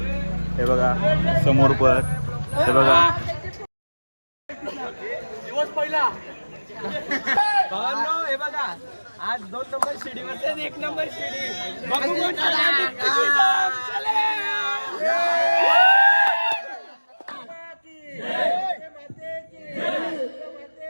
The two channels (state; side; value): inverted; both; correlation -1.00